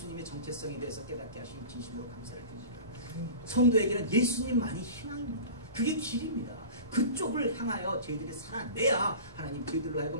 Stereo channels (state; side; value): inverted; both; correlation -0.36